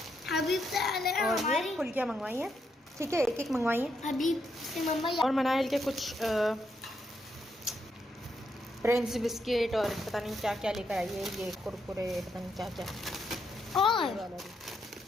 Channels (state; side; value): normal; both; correlation 0.79